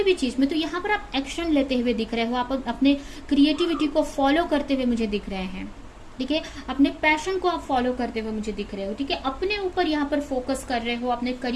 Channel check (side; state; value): both; identical; correlation 1.00